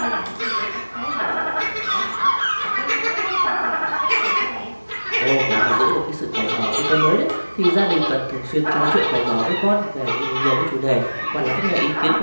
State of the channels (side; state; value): both; inverted; correlation -1.00